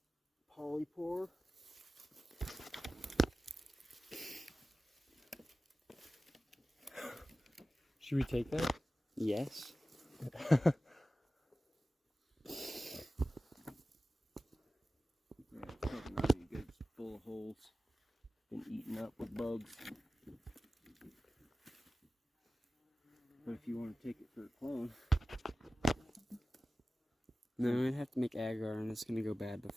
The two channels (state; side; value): normal; both; correlation 0.95